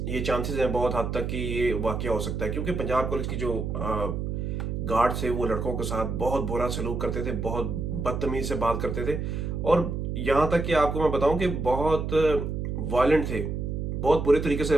ये चांसेस हैं बहुत हद तक कि ये वाक़या हो सकता है, क्योंकि पंजाब कॉलेज की जो गार्ड थे वो लड़कों के साथ बहुत बुरा सलूक करते थे, बहुत बदतमीज़ी से बात करते थे, और यहाँ तक कि आपको मैं बताऊँ कि बहुत वायलेंट थे, बहुत बुरे तरीके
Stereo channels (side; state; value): right; noise; hum, 3 dB below the sound